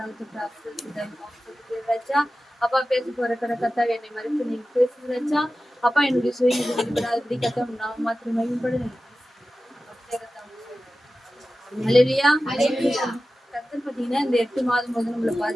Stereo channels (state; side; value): normal; both; correlation 0.94